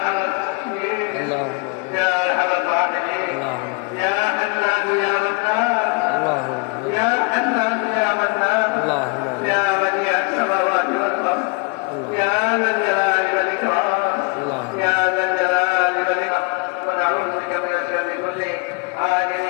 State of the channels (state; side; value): quieter; right; 32.7 dB